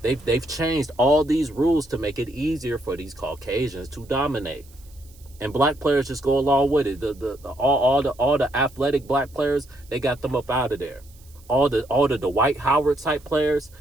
They've changed all these rules to make it easier for these Caucasians to dominate, and black players just go along with it. All the athletic black players, they got them up out of there. All the Dwight Howard type players,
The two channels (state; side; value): noise; right; hiss, 27 dB below the sound